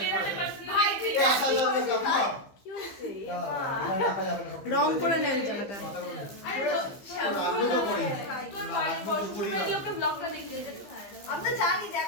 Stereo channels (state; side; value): late; right; 15 ms